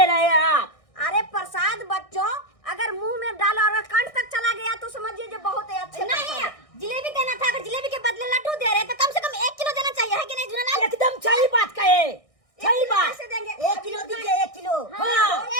रहे हैं आप। अरे प्रसाद बच्चों अगर मुंह में डाला और कंठ तक चला गया तो समझिए जो बहुत ही अच्छे। नहीं जिलेबी देना था, अगर जिलेबी के बदले लड्डू दे रहे तो कम से कम 1 किलो देना चाहिए, है कि नहीं जुनल? एकदम सही बात कहे, सही बात। कैसे देंगे? 1 किलो दीजिए, 1 किलो। हाँ।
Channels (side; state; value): right; late; 1.6 ms